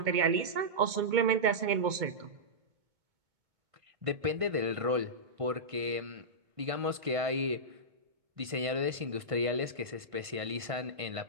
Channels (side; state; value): left; late; 1.5 ms